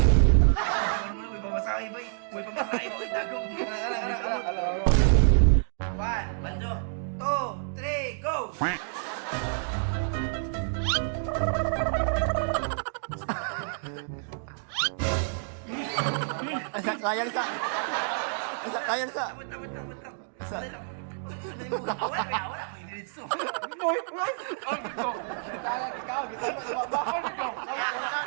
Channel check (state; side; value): silent; left; digital silence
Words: Ano mo, uy, pamasahe ba? Uy, pamasahe ba? Uy, dagom. Uy, kamot. 1, 2, 3, go! Kayang sa. Kayang sa. Wait lang. Isa. Wala, may diritso. Hindi